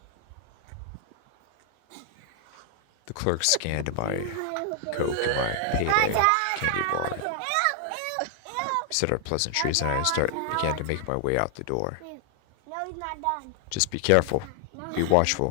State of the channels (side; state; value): both; different; correlation 0.00